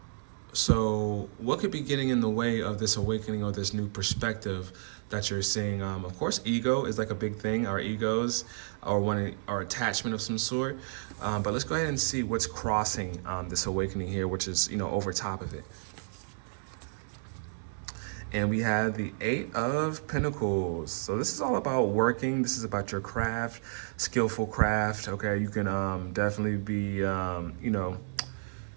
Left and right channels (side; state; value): left; silent; digital silence